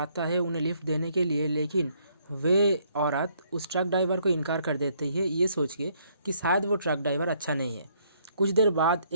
है उन्हें लिफ्ट देने के लिए, लेकिन वे औरत उस ट्रक ड्राइवर को इनकार कर देती है, ये सोच के कि शायद वो ट्रक ड्राइवर अच्छा नहीं है। कुछ देर बाद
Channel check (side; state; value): both; inverted; correlation -0.68